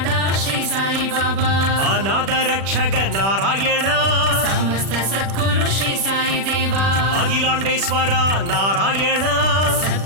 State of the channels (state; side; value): late; left; 36 ms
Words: श्री साई बाबा ಅನಾಥ ರಕ್ಷಕ ನಾರಾಯಣ समस्त सद्गुरु श्री साई देवा அகிலாண்டேஸ்வர நாராயಣ